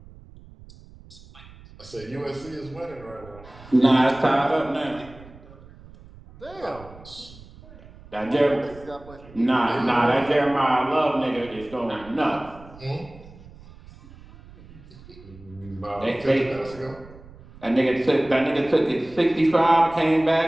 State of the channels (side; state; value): right; noise; rumble, 20 dB below the sound